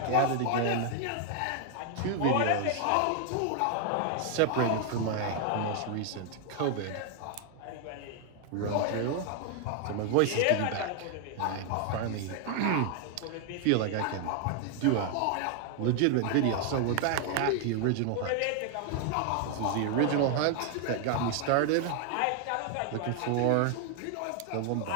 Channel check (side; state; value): both; different; correlation 0.00